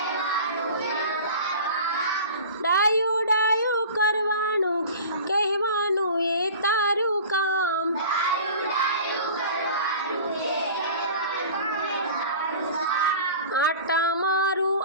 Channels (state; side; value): inverted; both; correlation -0.39